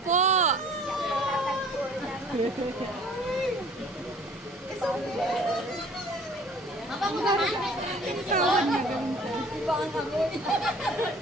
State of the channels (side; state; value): both; normal; correlation 0.51